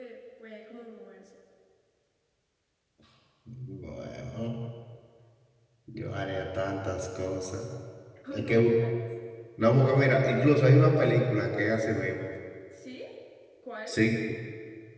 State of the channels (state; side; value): identical; both; correlation 1.00